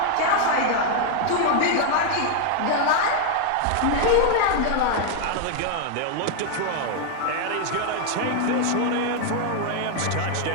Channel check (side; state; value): both; different; correlation 0.00